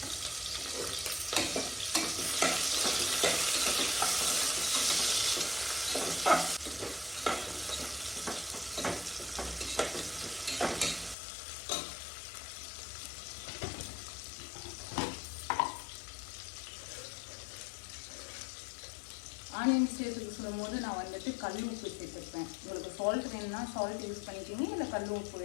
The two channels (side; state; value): right; drops out; at 11.2 s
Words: ஆனியன் சேர்த்துக்கு சொல்லும் போது நான் வந்துட்டு கல் உப்பு சேர்த்துருப்பேன். உங்களுக்கு சால்ட் வேணும்னா சால்ட் யூஸ் பண்ணிக்கிங்க, இல்லை கல் உப்பு